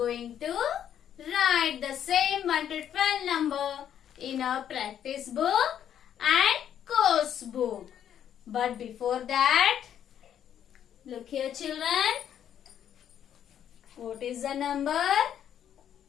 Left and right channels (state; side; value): quieter; right; 9.7 dB